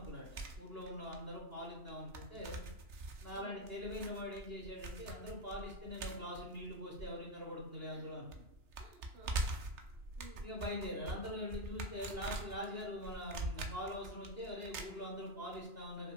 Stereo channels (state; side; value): late; left; 3.3 ms